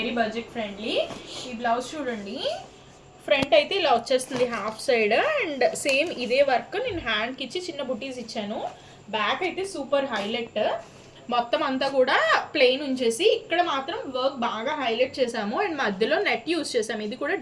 బడ్జెట్ ఫ్రెండ్లీ. ఈ బ్లౌజ్ చూడండి, ఫ్రంట్ అయితే ఇలా వచ్చేస్తుంది హాఫ్ సైడ్ అండ్ సేమ్ ఇదే వర్క్ నేను హ్యాండ్కి ఇచ్చి చిన్న బుటీస్ ఇచ్చాను. బ్యాక్ అయితే సూపర్ హైలైట్, మొత్తం అంతా కూడా ప్లెయిన్ ఉంచేసి ఇక్కడ మాత్రం వర్క్ బాగా హైలైట్ చేసాము అండ్ మధ్యలో నెట్ యూస్ చేసాము. ఇది కూడా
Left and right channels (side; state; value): both; identical; correlation 1.00